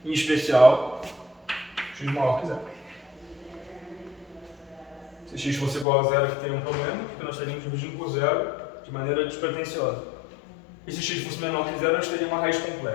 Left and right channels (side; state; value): right; drops out; at 5.9 s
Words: Em especial, x maior que zero. Se x fosse igual a zero, aqui teria um problema, porque nós estaríamos dividindo por zero de maneira despretensiosa. E se x fosse menor que zero, nós teríamos uma raiz